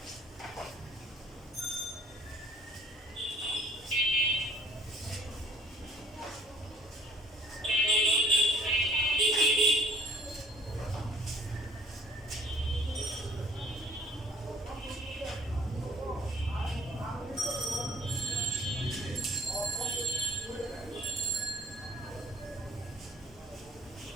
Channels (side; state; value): both; normal; correlation 0.56